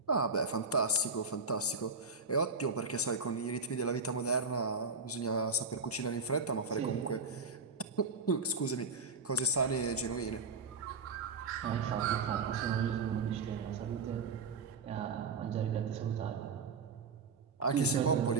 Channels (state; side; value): quieter; left; 4.1 dB